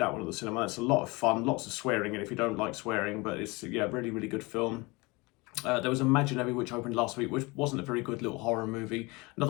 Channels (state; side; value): quieter; right; 25.1 dB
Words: one at the cinema. It's a lot of fun, lots of swearing in if you don't like swearing, but it's, yeah, really, really good film. There was Imaginary, which opened last week, which wasn't a very good little horror movie.